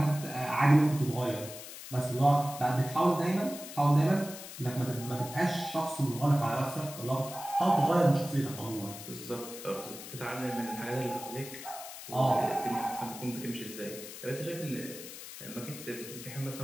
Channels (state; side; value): noise; left; hiss, 12 dB below the sound